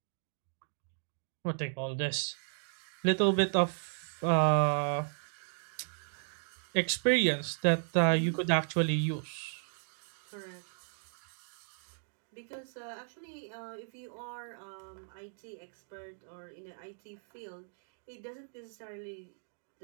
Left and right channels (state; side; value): silent; left; digital silence